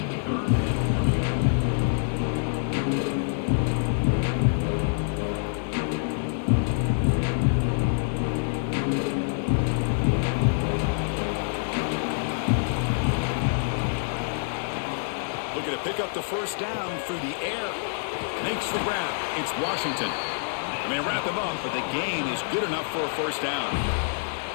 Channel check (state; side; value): silent; right; digital silence